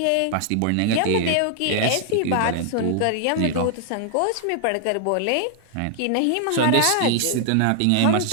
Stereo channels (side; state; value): both; different; correlation 0.00